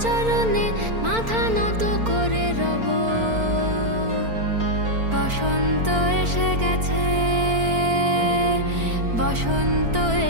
চরণে, মাথা নত করে রব, বসন্ত এসে গেছে, বসন্ত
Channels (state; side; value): late; left; 4.4 ms